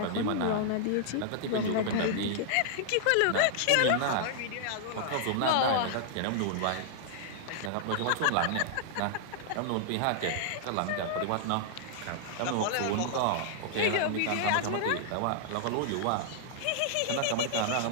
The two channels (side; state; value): both; different; correlation -0.01